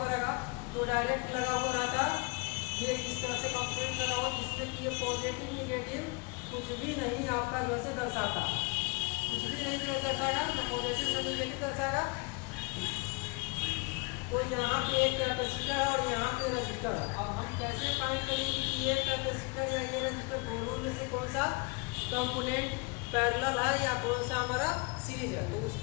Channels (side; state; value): right; quieter; 28.6 dB